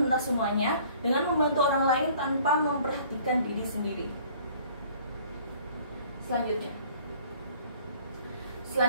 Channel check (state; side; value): inverted; both; correlation -0.54